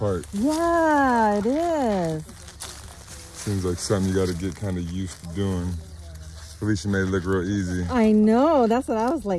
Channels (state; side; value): identical; both; correlation 1.00